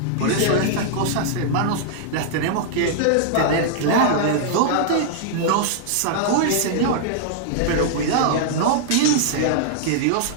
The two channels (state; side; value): different; both; correlation -0.01